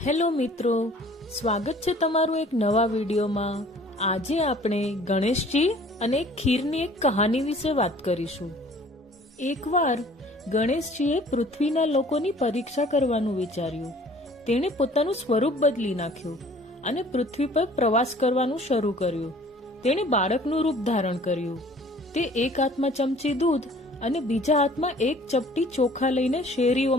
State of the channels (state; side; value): normal; both; correlation 0.52